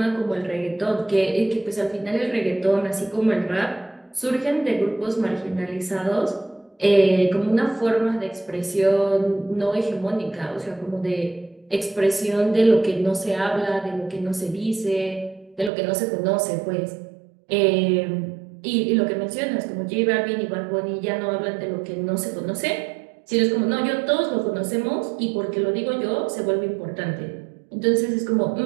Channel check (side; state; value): left; drops out; at 15.7 s